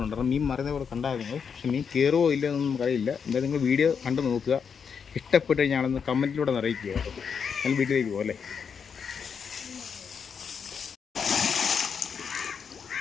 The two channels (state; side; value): quieter; right; 6.5 dB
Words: കാരണം മീൻ മറിയുന്ന പോലെ കണ്ടായിരുന്നു. പക്ഷേ മീൻ കയറുമോ ഇല്ല എന്നൊന്നും നമുക്കറിയില്ല. എന്തായാലും നിങ്ങൾ വീഡിയോ കണ്ട് നോക്കുക. ഇഷ്ടപ്പെട്ട് കഴിഞ്ഞാൽ കമൻറ്റിലൂടെ അറിയിക്കുക കേട്ടോ. ഞാൻ വീട്ടിലേക്ക് പോകും അല്ലേ.